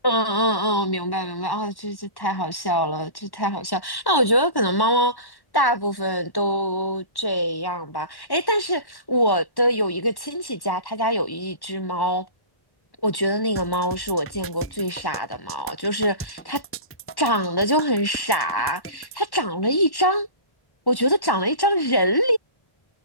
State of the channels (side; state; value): right; late; 1.1 ms